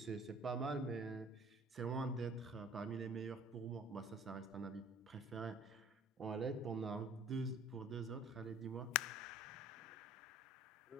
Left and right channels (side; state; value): both; normal; correlation 0.50